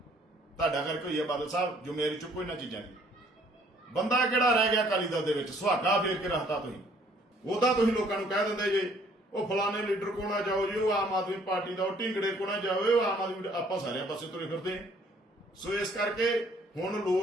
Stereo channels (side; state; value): both; normal; correlation 0.61